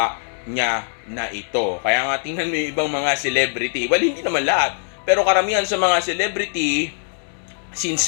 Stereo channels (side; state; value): right; silent; 65 dB below the other